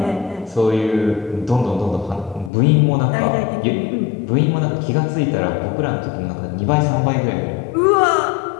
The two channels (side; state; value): right; drops out; at 2.5 s